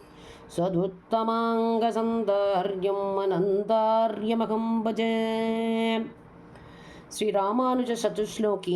சதுத்தமாங்கசந்தார்யம் அனந்தார்யமகம் பஜே. ஸ்ரீ ராமானுஜ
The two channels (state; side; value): identical; both; correlation 1.00